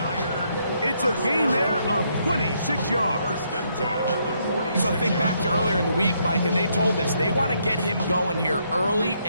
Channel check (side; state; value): both; inverted; correlation -0.74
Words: It's a gain there of 26 yards. So think back to earlier in the week, Mike, and they told us they want to get him going here early